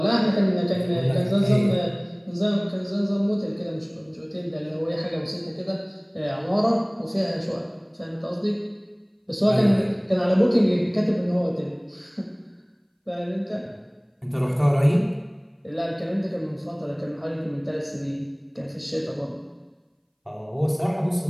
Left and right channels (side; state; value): both; identical; correlation 1.00